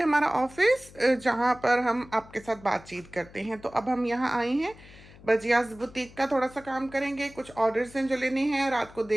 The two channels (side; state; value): left; noise; hum, 21 dB below the sound